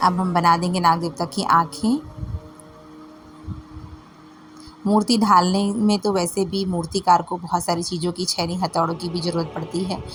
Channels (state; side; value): identical; both; correlation 1.00